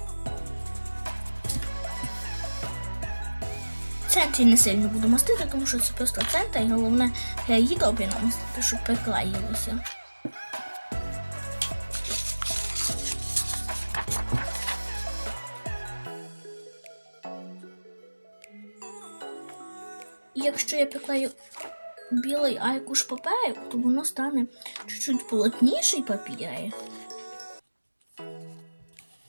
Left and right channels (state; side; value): inverted; both; correlation -1.00